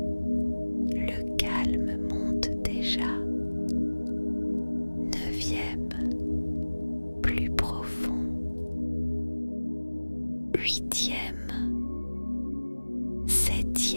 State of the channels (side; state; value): both; inverted; correlation -1.00